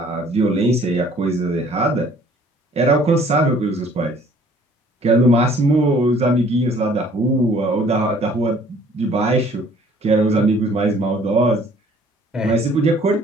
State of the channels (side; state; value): both; normal; correlation 0.56